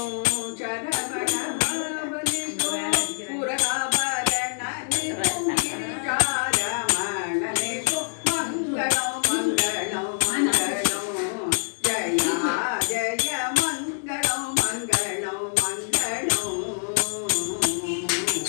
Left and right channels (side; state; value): right; silent; digital silence